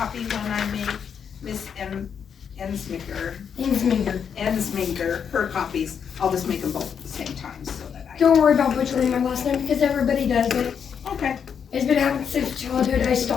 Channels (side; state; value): right; quieter; 7.3 dB